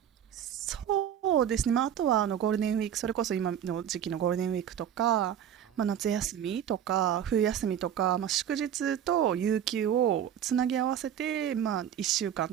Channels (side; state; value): left; quieter; 9.7 dB